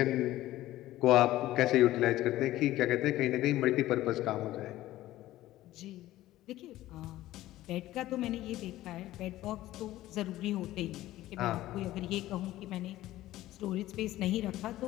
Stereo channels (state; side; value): quieter; right; 15.4 dB